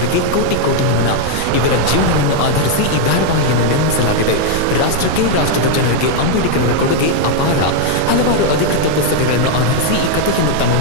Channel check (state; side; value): different; both; correlation 0.00